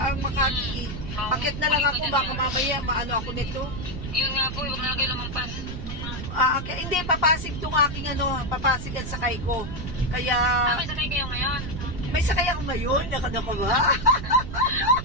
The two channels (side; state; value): right; noise; rumble, 7 dB below the sound